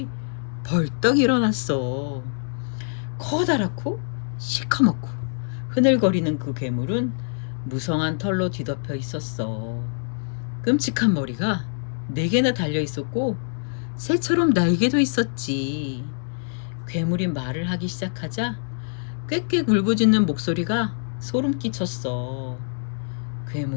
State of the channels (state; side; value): silent; right; digital silence